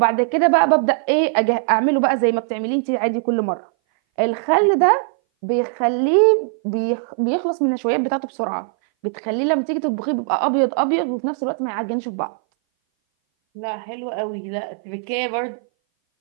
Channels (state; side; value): silent; left; 59 dB below the other